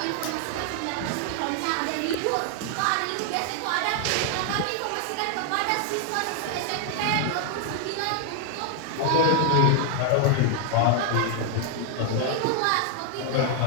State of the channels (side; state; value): both; different; correlation 0.00